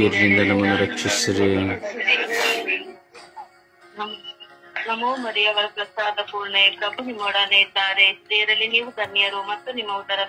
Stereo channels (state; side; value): identical; both; correlation 1.00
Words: ನಮ್ಮನ್ನು ರಕ್ಷಿಸಿರಿ. ನಮೋ ಮರಿಯವರ ಪ್ರಸಾದ ಪೂರ್ಣೆ ಪ್ರಭು ನಿಮ್ಮೊಡನೆ ಇದ್ದಾರೆ. ಸ್ತ್ರೀಯರಲ್ಲಿ ನೀವು ಧನ್ಯರು ಮತ್ತು ನಿಮ್ಮ